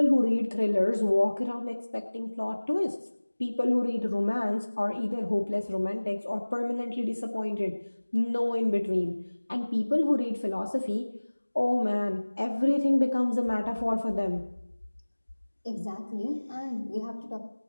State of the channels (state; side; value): inverted; both; correlation -1.00